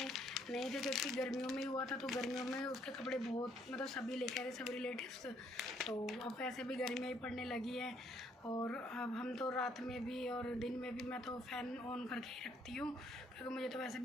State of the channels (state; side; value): normal; both; correlation 0.68